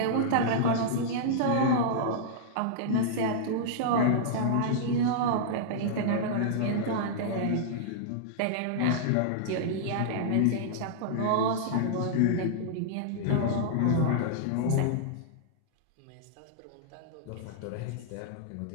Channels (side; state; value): both; different; correlation -0.02